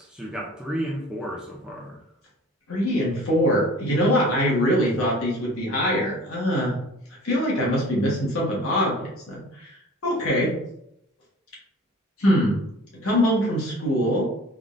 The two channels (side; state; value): both; normal; correlation 0.45